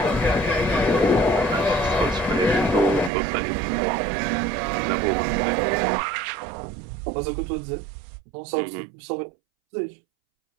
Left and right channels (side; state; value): left; drops out; at 3.1 s